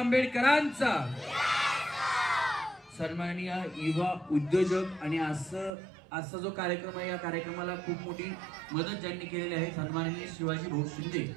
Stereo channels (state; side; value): drops out; left; at 5.7 s